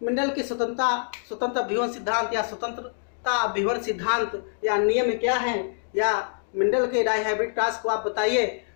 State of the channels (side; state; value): right; silent; digital silence